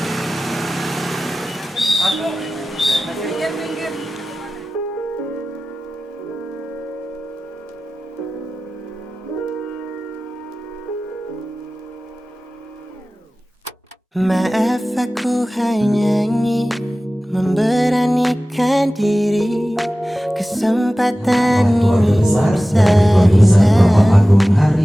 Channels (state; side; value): normal; both; correlation 0.96